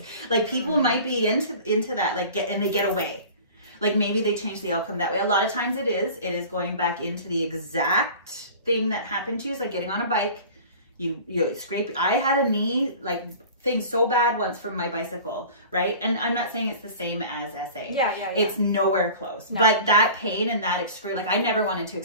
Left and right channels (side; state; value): both; inverted; correlation -0.41